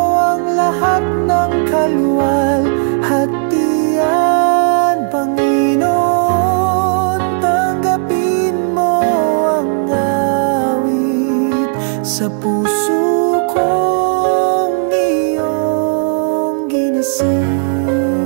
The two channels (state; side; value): silent; left; digital silence